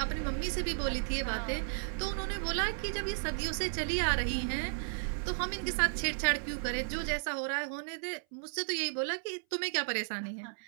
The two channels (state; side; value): silent; left; 55 dB below the other